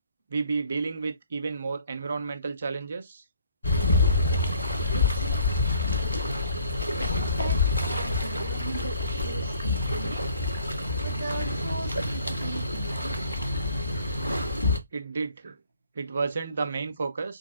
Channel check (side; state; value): both; inverted; correlation -0.60